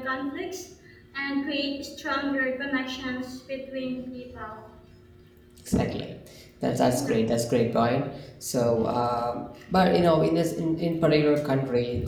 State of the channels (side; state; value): both; identical; correlation 1.00